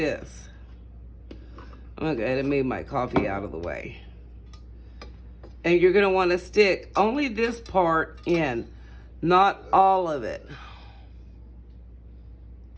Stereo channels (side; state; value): both; identical; correlation 1.00